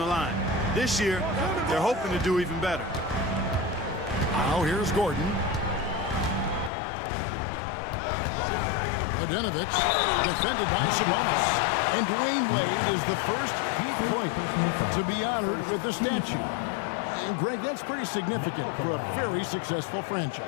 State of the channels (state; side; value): drops out; right; at 6.7 s